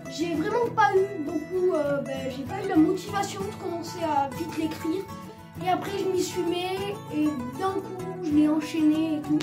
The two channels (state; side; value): identical; both; correlation 1.00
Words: J'ai vraiment pas eu beaucoup, j'ai pas eu la motivation de commencer à vite l'écrire. Et après je m'y suis mis et d'un coup je l'ai enchaîné et tout.